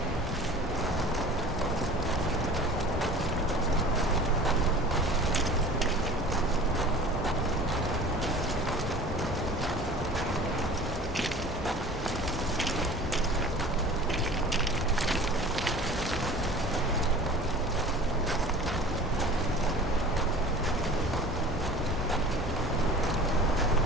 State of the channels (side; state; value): both; normal; correlation 0.41